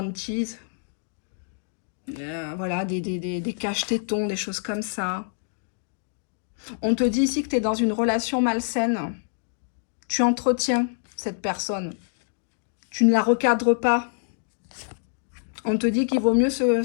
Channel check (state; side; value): silent; right; digital silence